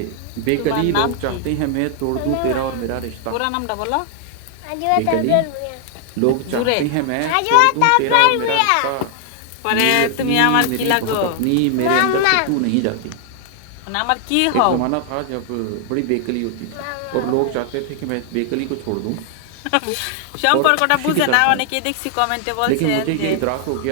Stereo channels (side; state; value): both; different; correlation 0.00